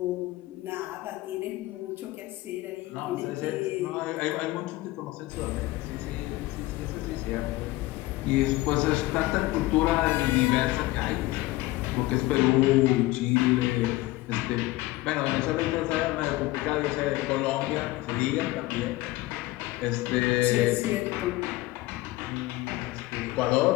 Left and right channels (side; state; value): right; quieter; 18.6 dB